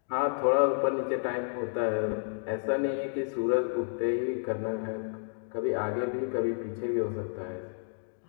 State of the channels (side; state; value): right; silent; digital silence